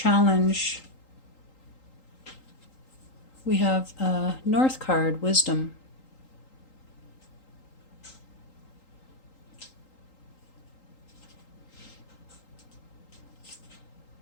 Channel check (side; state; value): right; late; 3.8 ms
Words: we have a North card, Wisdom.